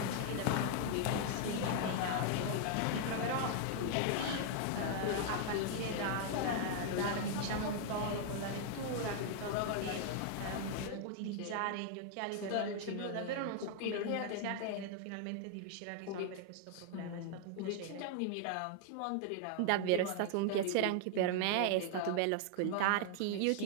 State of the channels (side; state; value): both; different; correlation 0.00